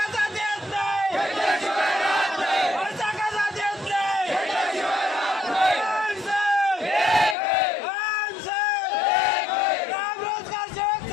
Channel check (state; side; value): drops out; right; at 7.4 s